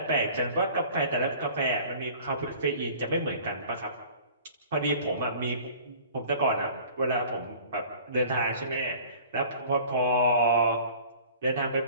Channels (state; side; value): inverted; both; correlation -0.47